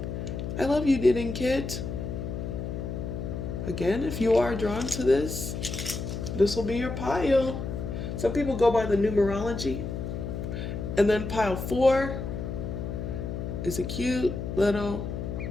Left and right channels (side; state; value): left; noise; hum, 5 dB below the sound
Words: I love you, knitting kit. Again, if you are drawn to this will be your pile. Some people go by the numerology. And then pile 4 is a cute little